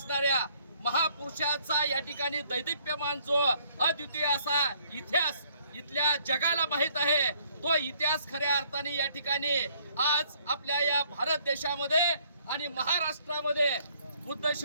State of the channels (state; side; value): inverted; both; correlation -0.64